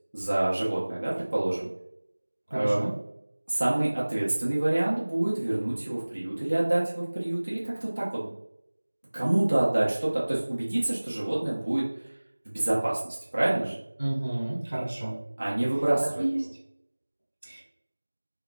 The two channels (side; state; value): both; inverted; correlation -1.00